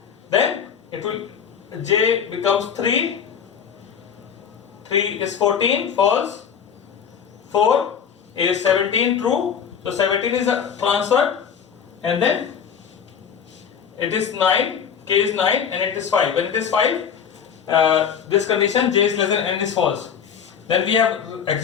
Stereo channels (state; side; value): quieter; right; 7.5 dB